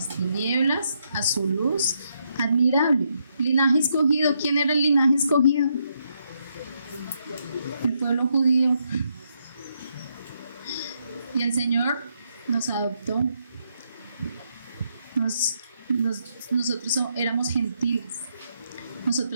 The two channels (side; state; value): both; inverted; correlation -0.78